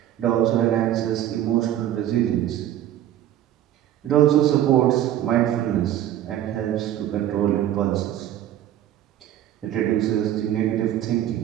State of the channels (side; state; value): left; quieter; 12.0 dB